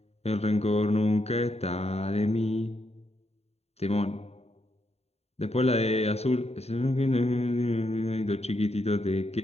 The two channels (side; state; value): right; late; 0.30 ms